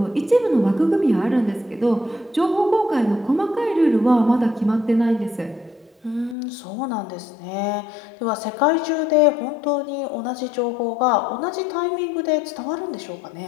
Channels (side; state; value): right; drops out; at 6.4 s